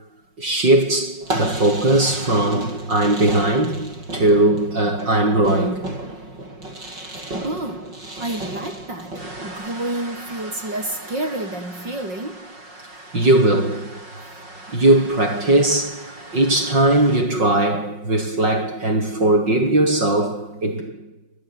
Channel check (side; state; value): left; late; 5.5 ms